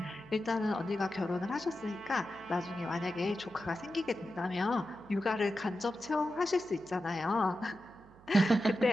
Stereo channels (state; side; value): noise; right; hum, 24 dB below the sound